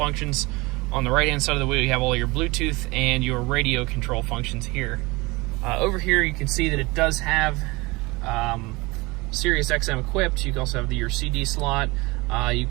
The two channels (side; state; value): left; quieter; 23.7 dB